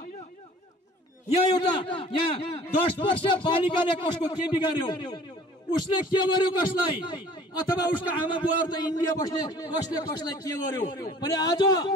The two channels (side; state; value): both; normal; correlation 0.50